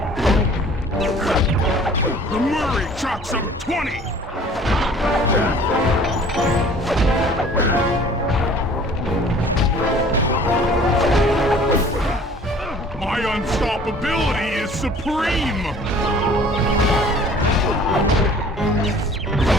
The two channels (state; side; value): normal; both; correlation 0.50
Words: The Murray chalks up 20! My unstoppability is supreme!